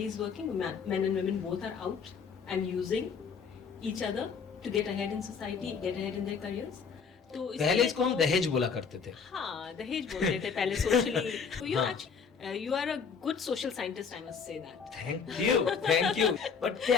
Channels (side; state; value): right; quieter; 6.0 dB